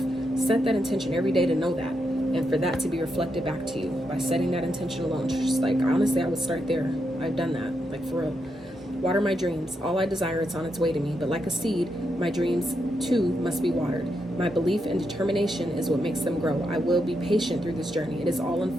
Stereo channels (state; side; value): normal; both; correlation 0.82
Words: Set that intention every day to know that. And for that to be reflected back to you by setting that intention alone. Just like, honestly, I would start there. I've done that. Like, for real. Water my dreams. All I desire, it's on its way to me. But like a seed, my dreams too must be watered. My belief and determination is what makes them grow. I will be patient through this journey. It is all